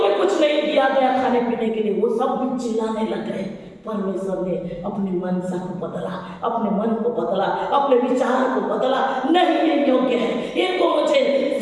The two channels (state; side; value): identical; both; correlation 1.00